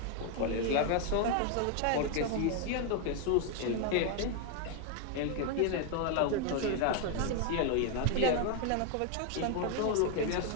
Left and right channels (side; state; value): both; different; correlation 0.00